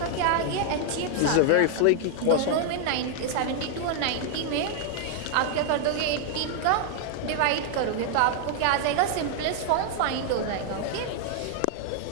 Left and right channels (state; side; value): different; both; correlation 0.00